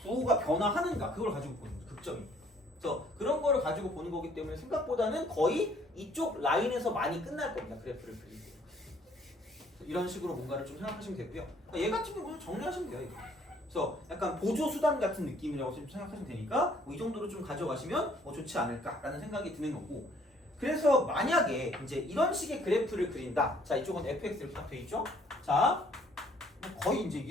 부호가 변화하는가 그걸 가지고 보는 거죠. 극점이. 그래서 그런 거를 가지고 보는 거기 때문에 생각보다는 거의 이쪽 라인에서 많이 끝날 겁니다. 그래프를 그리고. 이런 식으로 뭔가를 좀 생각하시면 되고요. 얘 같은 경우는 정리하시면 돼요. 이거. 그래서 약간 보조 수단 같은 느낌이라고 좀 생각하시면 되니까 이 정도로 좀 가져가시면 좋지 않을까라는 생각이 드는 거고. 그래서 만약에 이제 이런 식의 그래프를 그린다. 자, 이쪽은 fx 이렇게 딱 돼 있죠. 자, 거의 이제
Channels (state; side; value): normal; both; correlation 0.61